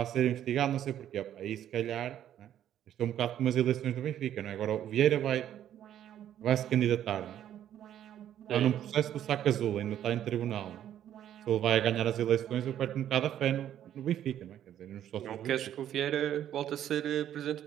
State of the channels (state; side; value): quieter; left; 10.9 dB